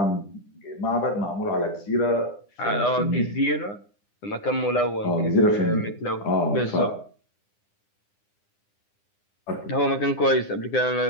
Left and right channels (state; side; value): late; right; 9.9 ms